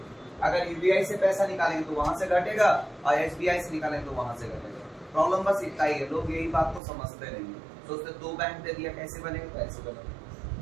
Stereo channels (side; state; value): left; drops out; at 6.8 s